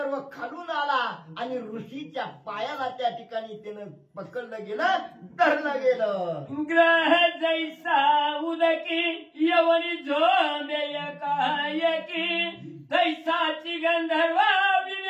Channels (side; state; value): both; identical; correlation 1.00